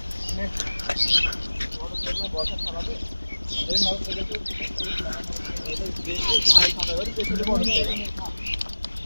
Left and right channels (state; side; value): inverted; both; correlation -1.00